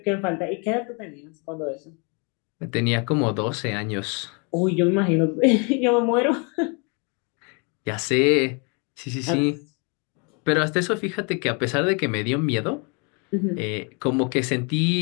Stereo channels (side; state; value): right; quieter; 34.1 dB